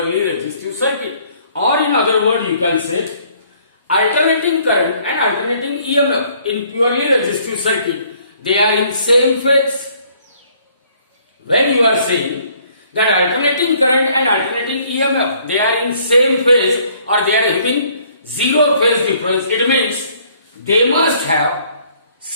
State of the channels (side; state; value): both; inverted; correlation -0.62